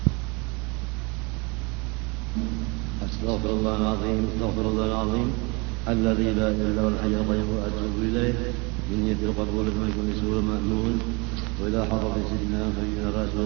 Astaghfirullahaladzim alladzi la ilaha illa huwal hayyul qayyum wa atubu ilaih inni tilqabul ma kulli sura ma'mun wa ila hadrati sayyidina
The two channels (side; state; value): left; quieter; 28.5 dB